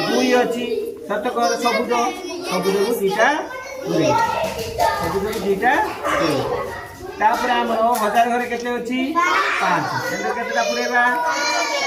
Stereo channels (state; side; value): identical; both; correlation 1.00